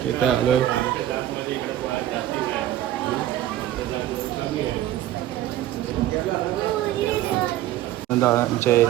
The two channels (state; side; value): quieter; left; 13.2 dB